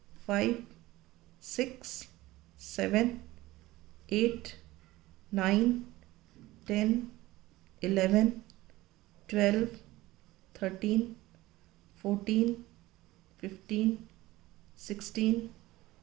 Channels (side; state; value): left; quieter; 18.2 dB